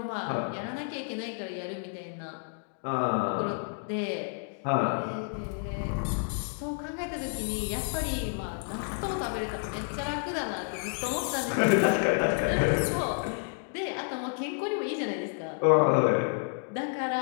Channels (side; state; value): right; silent; 58 dB below the other